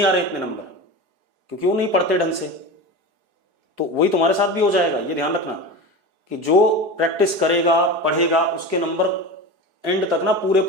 आ रहे इतने नंबर, क्योंकि वो नहीं पढ़ते ढंग से। तो वही तुम्हारे साथ भी हो जाएगा, ये ध्यान रखना कि जो प्रैक्टिस करेगा पढ़ेगा उसके नंबर एंड तक ना पूरे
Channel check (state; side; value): late; left; 4.8 ms